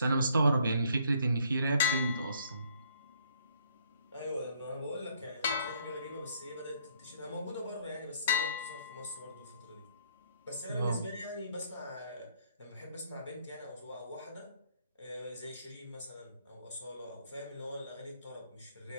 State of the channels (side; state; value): both; inverted; correlation -0.65